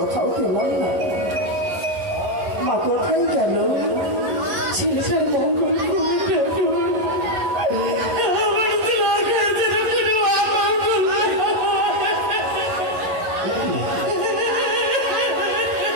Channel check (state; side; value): late; left; 11 ms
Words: পেলাম না। মা কোথায় গেল? ছেলেটার মঙ্গল